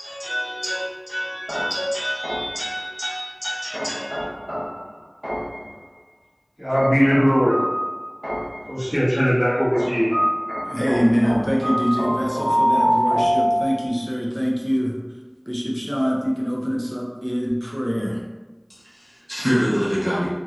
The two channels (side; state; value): both; identical; correlation 1.00